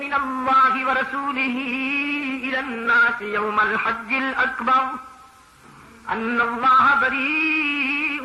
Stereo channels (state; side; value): identical; both; correlation 1.00